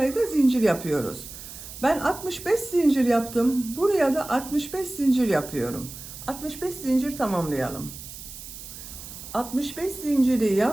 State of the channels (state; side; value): noise; right; hiss, 13 dB below the sound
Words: zincir yapıyoruz. Ben 65 zincir yaptım. Buraya da 65 zincir yapıyorum. 65 zincir tamamlayalım. 65 zinciri